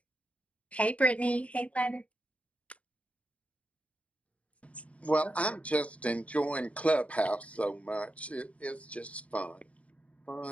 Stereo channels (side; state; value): right; late; 0.065 ms